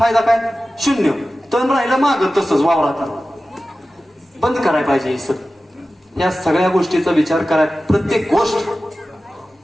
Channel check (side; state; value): both; normal; correlation 0.95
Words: काय? 0. तण राहिलं मागं तसंच वावरात. बंद करायला पाहिजे हे सगळं. या सगळ्या गोष्टीचा विचार कराय. प्रत्येक गोष्ट